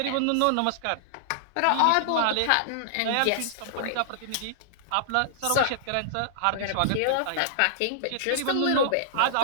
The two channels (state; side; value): different; both; correlation -0.01